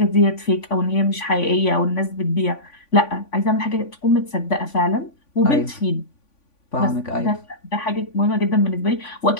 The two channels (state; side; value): late; right; 3.5 ms